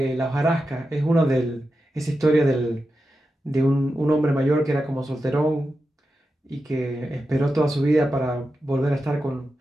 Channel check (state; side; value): normal; both; correlation 0.90